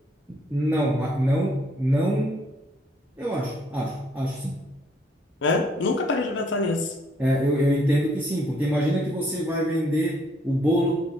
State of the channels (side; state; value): both; normal; correlation 0.67